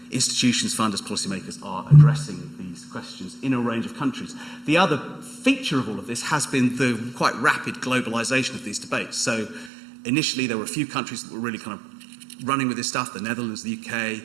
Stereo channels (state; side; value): drops out; left; at 9.7 s